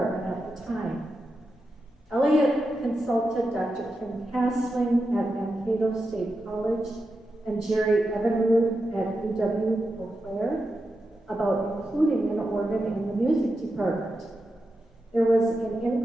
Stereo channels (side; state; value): both; normal; correlation 0.89